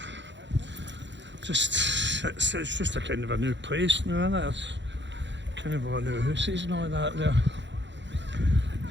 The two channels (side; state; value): left; late; 0.52 ms